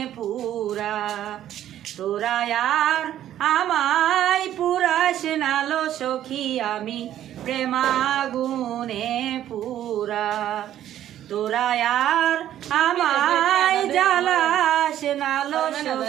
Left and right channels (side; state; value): left; quieter; 11.8 dB